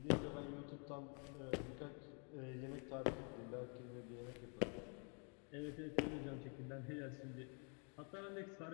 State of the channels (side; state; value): right; quieter; 38.6 dB